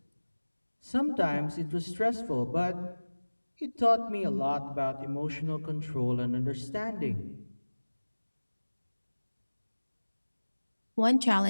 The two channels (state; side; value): inverted; both; correlation -1.00